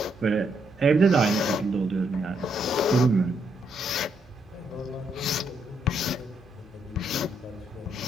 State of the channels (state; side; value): normal; both; correlation 0.76